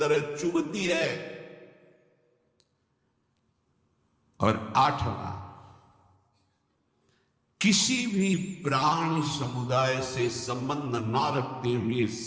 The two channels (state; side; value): identical; both; correlation 1.00